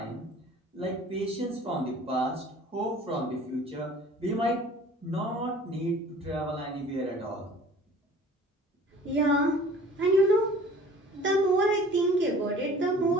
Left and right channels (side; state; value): both; normal; correlation 0.48